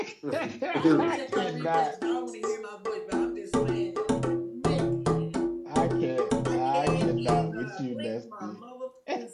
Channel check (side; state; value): both; identical; correlation 1.00